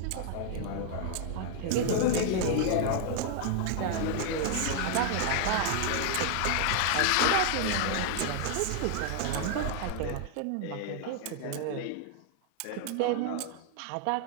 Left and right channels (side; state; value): both; different; correlation 0.00